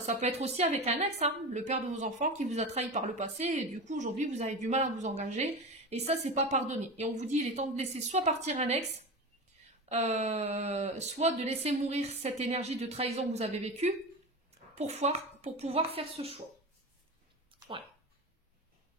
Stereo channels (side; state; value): both; normal; correlation 0.26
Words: peut être aussi avec un ex, hein, le père de vos enfants qui vous a trahi par le passé. Et du coup, aujourd'hui, vous avez du mal à vous engager. Et ça, c'est pas pardonné. Et on vous dit, il est temps de laisser soit partir un ex, soit de laisser mourir cette énergie de trahison que vous avez vécue pour pouvoir faire ce choix. Ouais.